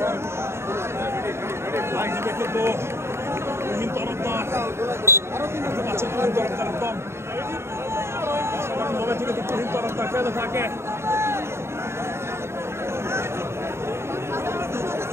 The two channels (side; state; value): left; late; 0.13 ms